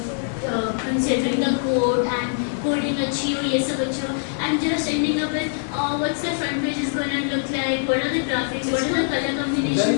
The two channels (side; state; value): right; silent; digital silence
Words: considering the code and coding I'm just ending up with what's the front page is going to look like, what are the graphics, what are the color combinations